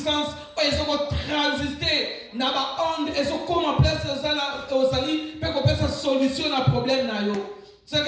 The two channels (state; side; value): identical; both; correlation 1.00